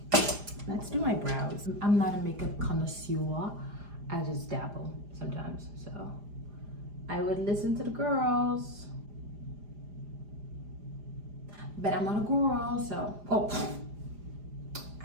Let's do my brows. I'm not a makeup connoisseur. I just dabble sometimes. So I would listen to the girls. But I'm not a girl, so,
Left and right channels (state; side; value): late; left; 4.9 ms